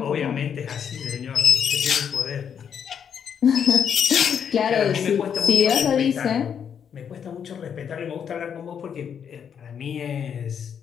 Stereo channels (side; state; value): right; quieter; 7.8 dB